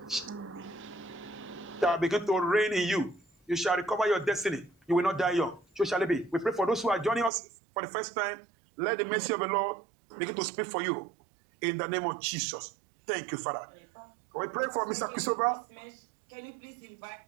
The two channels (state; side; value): drops out; left; at 7.3 s